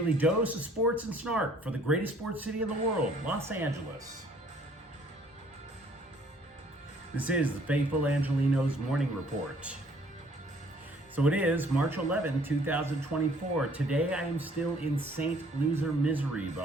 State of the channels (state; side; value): normal; both; correlation 0.60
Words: dose of sports and snark for the greatest sports city in the world, Los Angeles. This is the faithful Angelenos Morning Report. So it is March 11, 2024. Today I am still in St. Loser misery, but